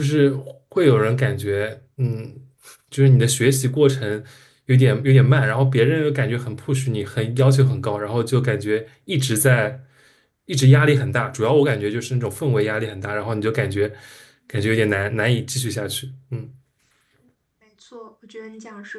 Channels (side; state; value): both; identical; correlation 1.00